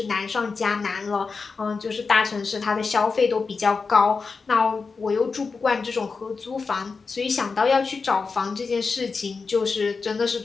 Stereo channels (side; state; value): right; quieter; 4.7 dB